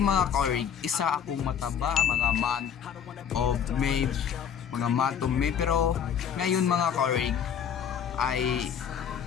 kaorig, isa akong mataba mga month of May, mga month of May, pero ngayon mga kaorig ay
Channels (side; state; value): right; quieter; 8.2 dB